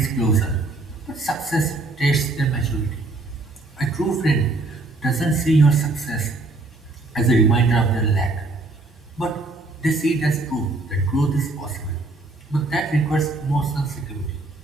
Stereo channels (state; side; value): quieter; left; 3.1 dB